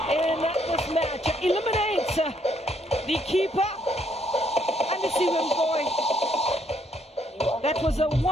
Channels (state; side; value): normal; both; correlation 0.70